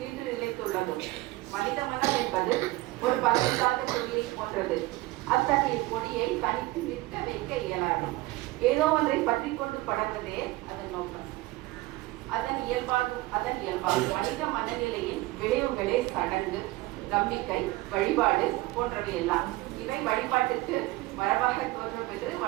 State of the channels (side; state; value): left; quieter; 19.7 dB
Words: நிலைத்துள்ளது. மனித மனம் என்பது ஒரு பலமில்லாத கொடியை போன்றது. அத்தகைய கொடியை தனித்து நிற்க வைக்க இயலாது. ஏதோ ஒன்றை பற்றி கொண்டு படர்வதே அதன் நோக்கம். அதன் இயல்பாகும் மனித மனநிலையின் விளைவுகளே சடங்கு, நம்பிக்கை, வழிபாடு போன்றவை எல்லாம். இவை வழிபாட்டுக்கு மரபாக தோன்றும் என்று